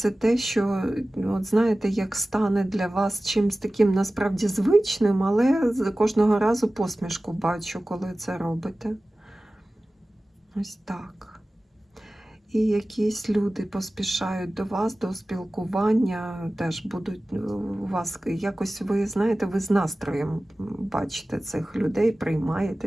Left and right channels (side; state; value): both; normal; correlation 0.96